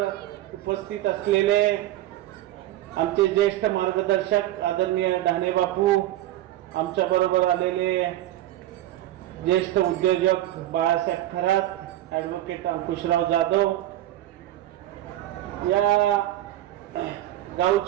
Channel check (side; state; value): left; quieter; 14.3 dB